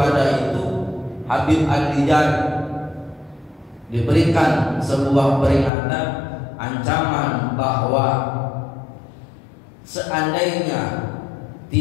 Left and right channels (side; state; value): right; drops out; at 5.7 s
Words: itu. Habib An-Nizar diberikan sebuah peringatan, ancaman bahwa seandainya